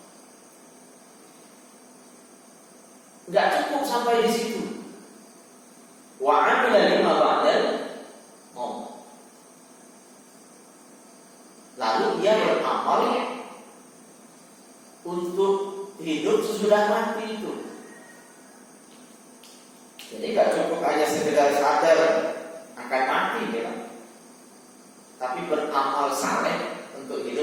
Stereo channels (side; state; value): both; identical; correlation 1.00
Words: Enggak cukup sampai di situ. Wa 'amila lima ba'dal maut. Lalu dia beramal untuk hidup sesudah mati itu. Jadi gak cukup hanya sekedar sadar akan mati, ya, tapi beramal saleh untuk